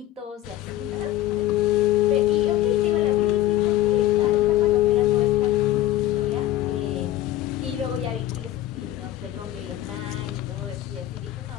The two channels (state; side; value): quieter; right; 13.9 dB